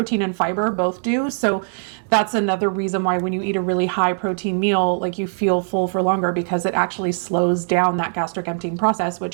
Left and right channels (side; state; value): left; silent; digital silence